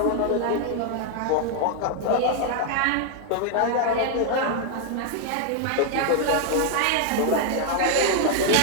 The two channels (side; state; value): both; different; correlation 0.00